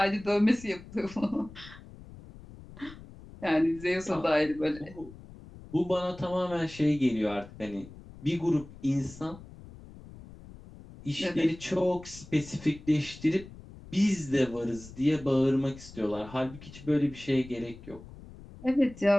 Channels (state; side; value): noise; left; rumble, 18 dB below the sound